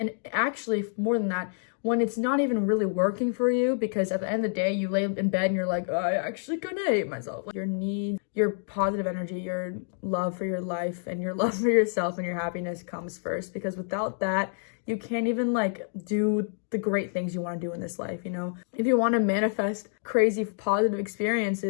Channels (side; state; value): right; silent; digital silence